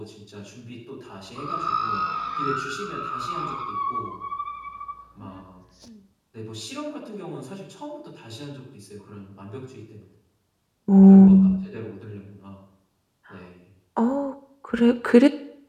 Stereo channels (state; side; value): identical; both; correlation 1.00